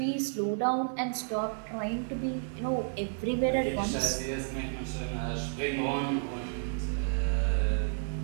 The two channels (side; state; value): left; silent; digital silence